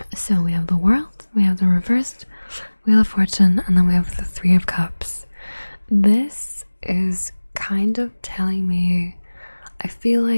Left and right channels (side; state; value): both; inverted; correlation -1.00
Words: So we have the World, we have the reversed Wheel of Fortune, and then we have the Three of Cups. This is kind of telling me, I feel